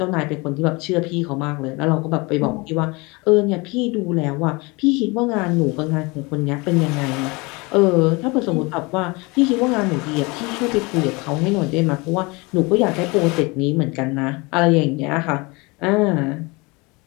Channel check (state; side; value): quieter; right; 26.1 dB